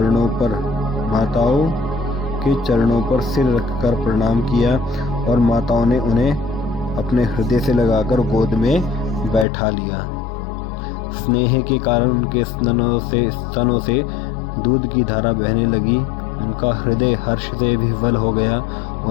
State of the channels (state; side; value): drops out; right; at 9.5 s